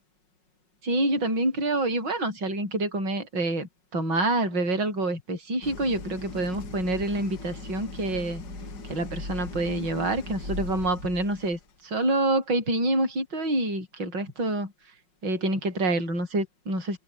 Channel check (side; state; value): left; late; 5.5 ms